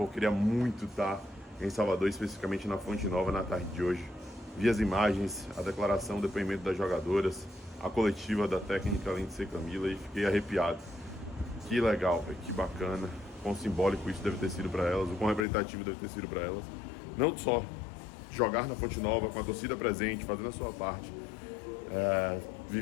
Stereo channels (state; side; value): drops out; right; at 15.5 s